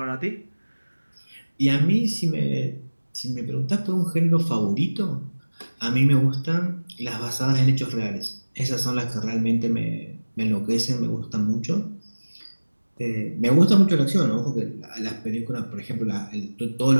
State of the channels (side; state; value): both; inverted; correlation -1.00